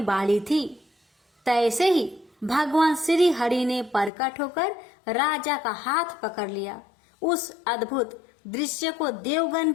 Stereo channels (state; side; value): drops out; right; at 4.1 s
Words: वाली थी, तैसे ही भगवान श्री हरि ने प्रकट होकर राजा का हाथ पकड़ लिया। उस अद्भुत दृश्य को देवगण